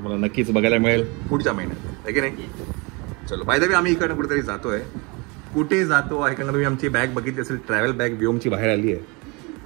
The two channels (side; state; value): left; quieter; 28.5 dB